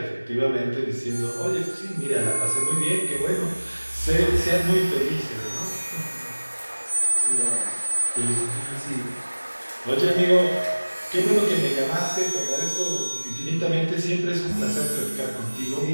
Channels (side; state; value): both; inverted; correlation -1.00